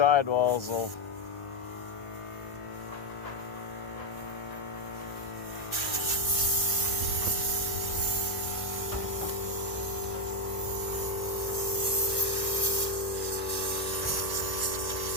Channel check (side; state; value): right; late; 1.1 ms